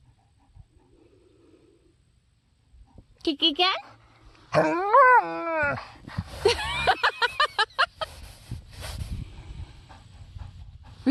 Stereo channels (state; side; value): identical; both; correlation 1.00